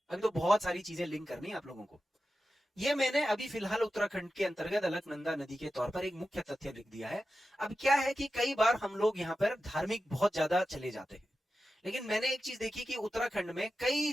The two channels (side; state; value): both; normal; correlation 0.92